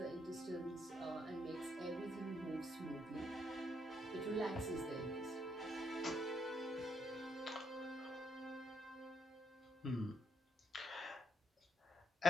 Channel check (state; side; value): normal; both; correlation 0.75